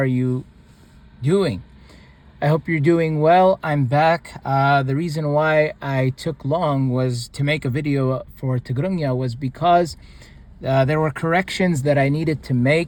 you doing? I hope you're doing well. I'm back. The reason why I took long was to make a video for Tigrigna was because there were corrections that I needed to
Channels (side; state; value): both; identical; correlation 1.00